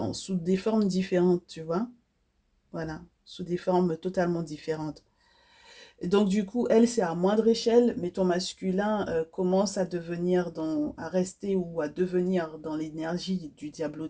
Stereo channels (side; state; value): both; identical; correlation 1.00